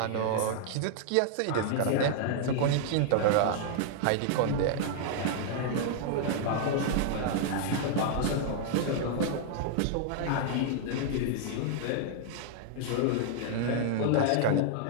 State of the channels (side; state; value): both; different; correlation -0.01